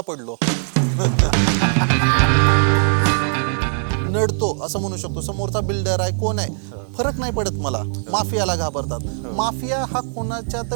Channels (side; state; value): left; silent; digital silence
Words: पडलो. नडतो असं म्हणू शकतो. समोरचा बिल्डर आहे, कोण आहे, फरक नाही पडत मला. माफियाला घाबरतात. माफिया हा कोणाच्या